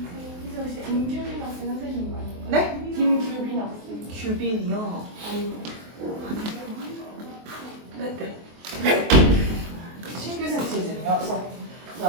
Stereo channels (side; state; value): left; late; 23 ms